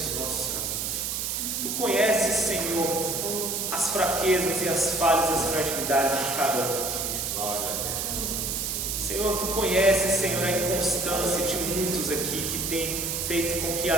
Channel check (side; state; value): right; noise; hiss, 1 dB below the sound